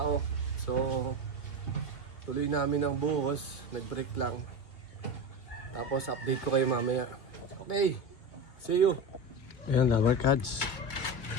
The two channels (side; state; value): right; late; 2.2 ms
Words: So, tuloy namin ang buhos. Nag-break lang. Tapos, update ko kayo mamaya. Okay. See you. Ayan, Dabarkads.